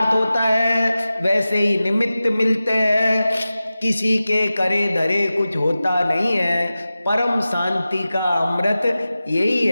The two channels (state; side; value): inverted; both; correlation -0.95